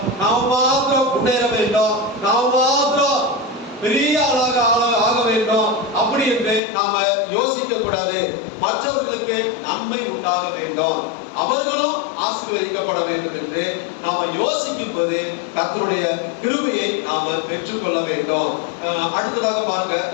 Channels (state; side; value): drops out; right; at 6.6 s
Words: நாம மாத்திரம் முன்னேற வேண்டும், நாம மாத்திரம் பெரிய ஆளாக ஆக வேண்டும் அப்படி என்று நாம யோசிக்க கூடாது. மற்றவர்களுக்கு நன்மை உண்டாக வேண்டும், அவர்களும் ஆசீர்வதிக்கப்பட வேண்டும் என்று நாம யோசிக்கும் போது கர்த்தருடைய கிருபையை நாம பெற்றுக்கொள்ள வேண்டும். அடுத்ததாக பாருங்க,